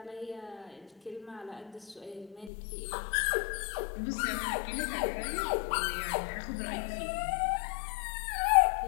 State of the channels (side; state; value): right; drops out; at 2.5 s